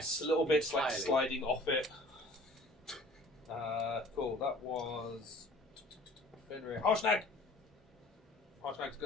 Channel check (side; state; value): both; normal; correlation 0.50